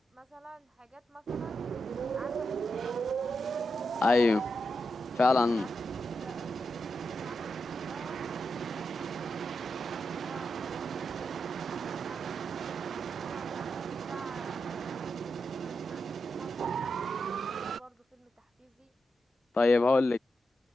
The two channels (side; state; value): both; normal; correlation 0.86